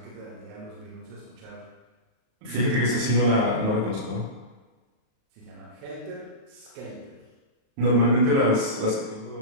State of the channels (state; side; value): late; left; 37 ms